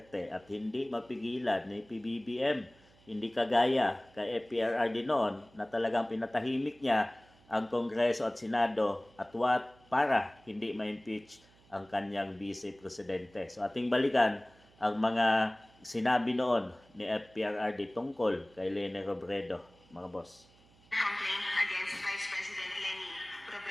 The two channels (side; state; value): right; noise; hum, 29 dB below the sound